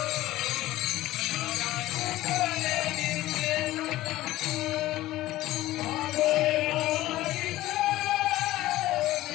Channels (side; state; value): right; quieter; 16.1 dB